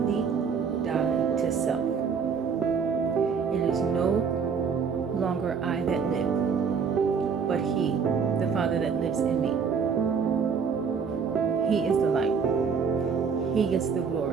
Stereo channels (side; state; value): left; quieter; 6.1 dB